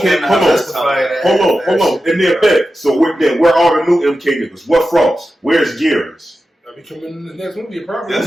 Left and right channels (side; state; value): both; normal; correlation 0.92